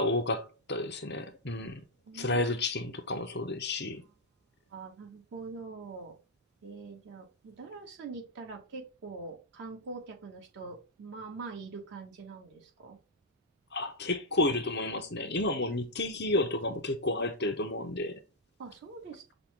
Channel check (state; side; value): normal; both; correlation -0.03